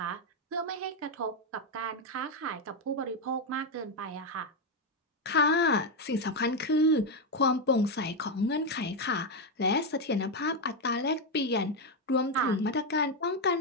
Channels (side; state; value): both; normal; correlation 0.05